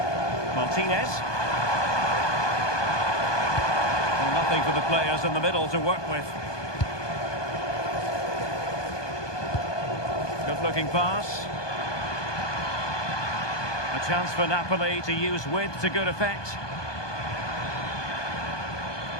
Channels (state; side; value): late; right; 1.2 ms